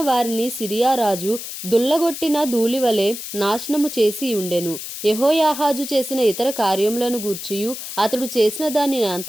వారిని సిరియా రాజు దుల్లగొట్టిన ధూళివలె నాశనము చేసి ఉండెను. యెహోయాహాజు చేసిన ఇతర కార్యములను గూర్చియు అతడు చేసిన దాని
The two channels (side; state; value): left; noise; hiss, 9 dB below the sound